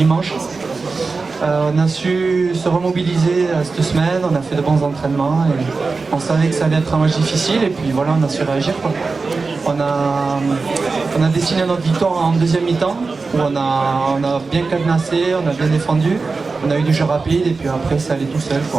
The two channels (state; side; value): quieter; left; 4.2 dB